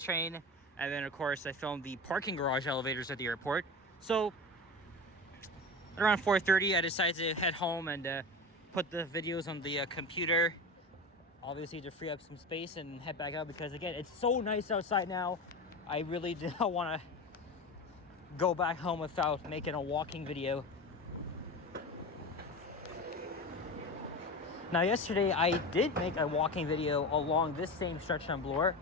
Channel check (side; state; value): both; normal; correlation 0.27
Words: train. And then of course I filmed the parking garage elevators at the airport. So around 4:30 I decided to head home and put the videos on the computer. Obviously to free up some space and head back out, because again, it's so nice outside now. I really don't want to go back home without making a walking video. Now yesterday I did make a walking video along this same stretch on Bloor,